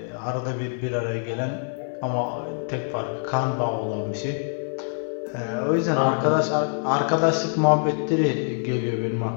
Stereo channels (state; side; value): silent; right; 57 dB below the other